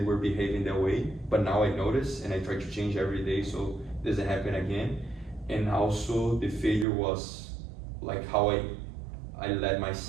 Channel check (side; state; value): left; drops out; at 6.9 s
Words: were behaving that way. But now I notice and I try to change every day so it doesn't happen again. And also the failure was like how I let